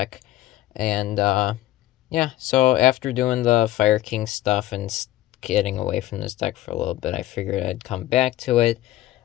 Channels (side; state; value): right; quieter; 15.0 dB